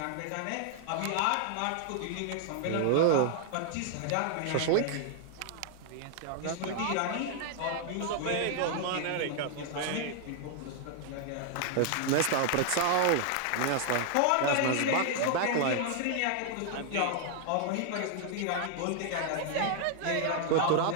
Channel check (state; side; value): different; both; correlation 0.00